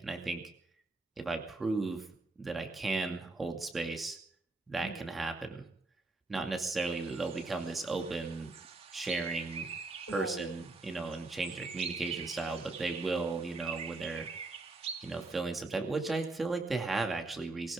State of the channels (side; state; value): left; quieter; 3.3 dB